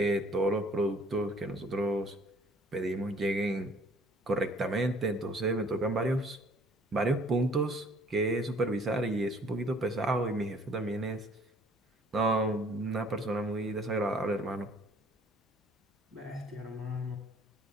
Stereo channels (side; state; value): both; normal; correlation 0.57